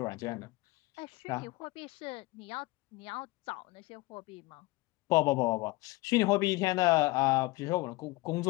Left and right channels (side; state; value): right; quieter; 21.7 dB